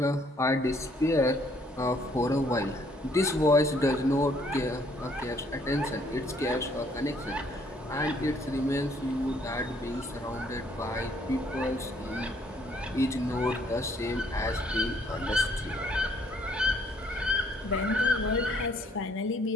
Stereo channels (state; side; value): normal; both; correlation 0.65